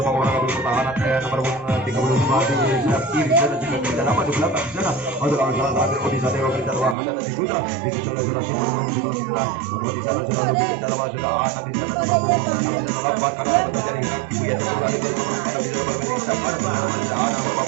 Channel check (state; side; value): drops out; left; at 7.0 s